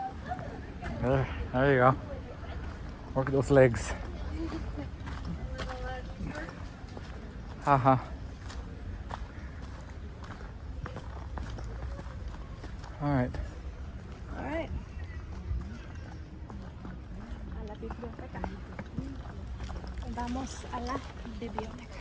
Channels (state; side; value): identical; both; correlation 1.00